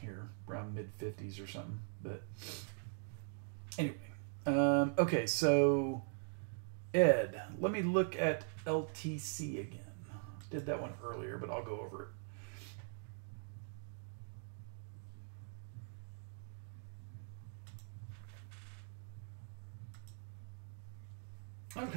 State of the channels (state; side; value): silent; left; digital silence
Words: around mid-50s or something. But anyway, okay, so Ed, let me look at LTC again. Did that one earlier, but I'll go over it.